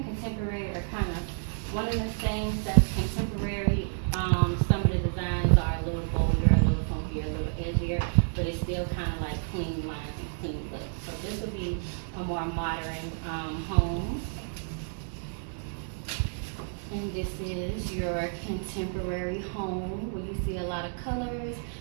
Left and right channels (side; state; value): left; silent; digital silence